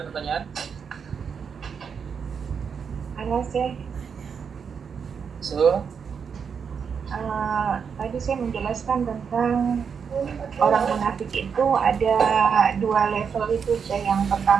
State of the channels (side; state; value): left; quieter; 6.5 dB